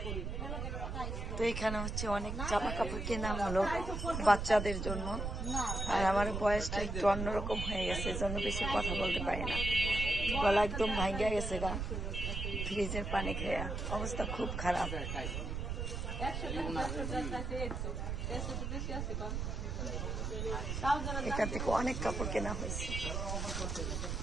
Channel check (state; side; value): noise; right; rumble, 3 dB below the sound